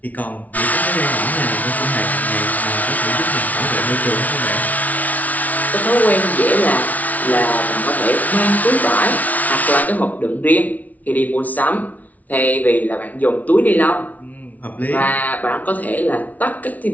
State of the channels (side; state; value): right; late; 0.073 ms